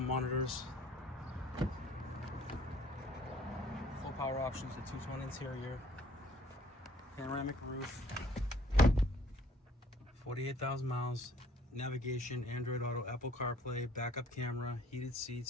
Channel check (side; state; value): both; normal; correlation 0.58